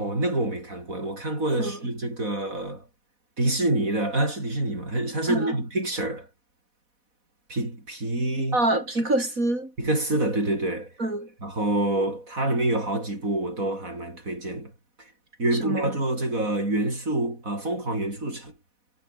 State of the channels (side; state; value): left; late; 4.1 ms